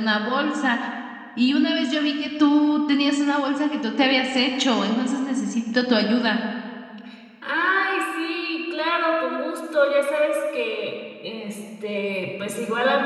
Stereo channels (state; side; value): identical; both; correlation 1.00